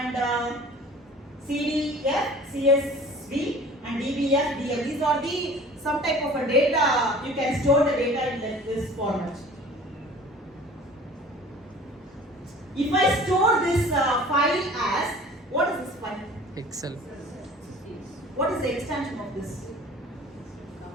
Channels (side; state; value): both; normal; correlation 0.45